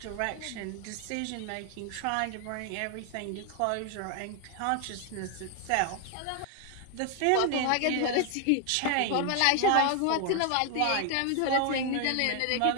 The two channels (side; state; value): both; different; correlation 0.00